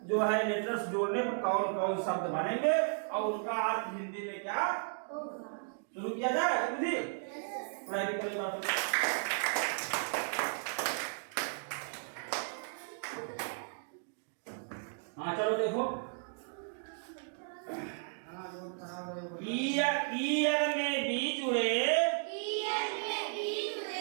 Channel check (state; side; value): silent; left; digital silence